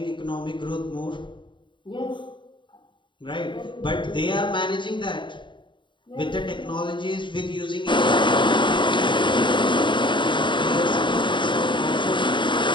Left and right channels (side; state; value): right; late; 0.23 ms